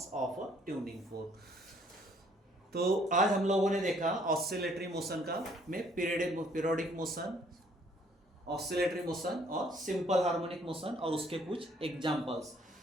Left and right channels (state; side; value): normal; both; correlation 0.62